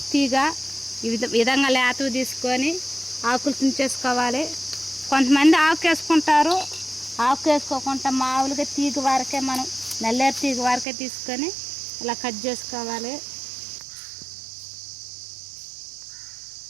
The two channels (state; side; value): drops out; left; at 10.9 s